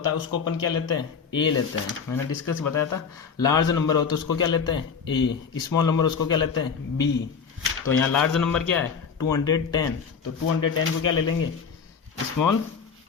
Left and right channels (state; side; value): quieter; right; 6.1 dB